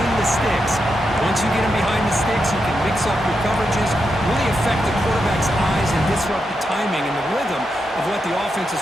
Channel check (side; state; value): both; normal; correlation 0.85